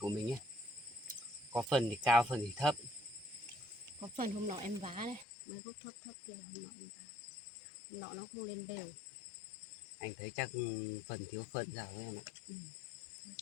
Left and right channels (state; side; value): drops out; right; at 5.2 s